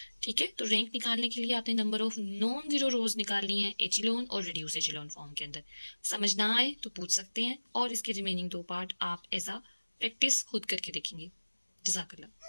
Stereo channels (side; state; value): both; inverted; correlation -1.00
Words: ठीक है, तो रैंक निकालने के लिए आपने नंबर ऑफ नॉन ज़ीरो रोज निकालनी है एचिलोन और रिड्यूस एचिलोन फॉर्म के अंदर। समझ ना आए तो पूछ सकते हैं, और इसके रिमेनिंग 2 पार्ट आप ऐसा प्रैक्टिस खुद करके देखेंगे।